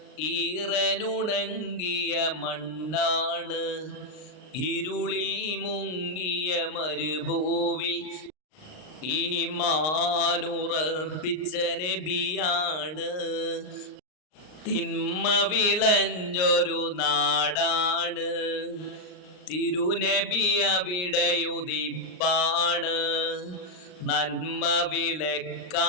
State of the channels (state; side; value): late; right; 39 ms